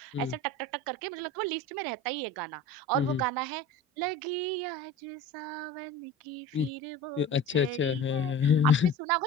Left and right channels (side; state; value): both; normal; correlation 0.36